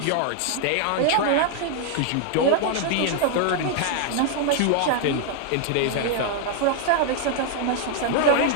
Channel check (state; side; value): different; both; correlation 0.00